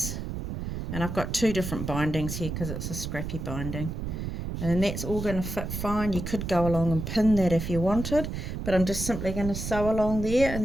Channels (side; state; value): right; noise; rumble, 5 dB below the sound